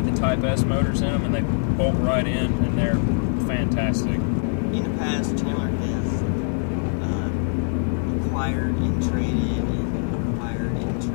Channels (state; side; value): silent; right; digital silence